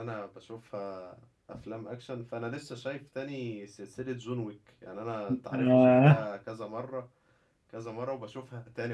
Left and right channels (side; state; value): both; identical; correlation 1.00